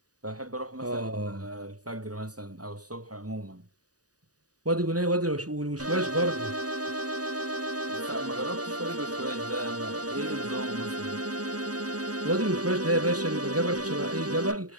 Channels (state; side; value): late; left; 0.68 ms